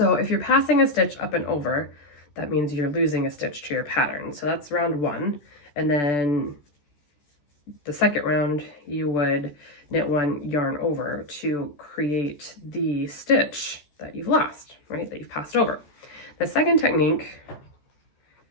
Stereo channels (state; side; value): late; right; 14 ms